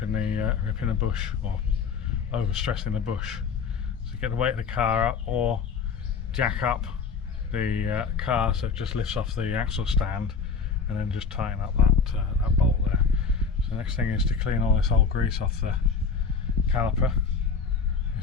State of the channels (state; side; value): quieter; right; 5.4 dB